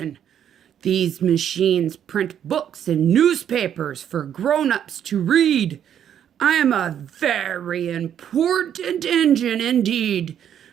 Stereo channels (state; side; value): quieter; left; 9.5 dB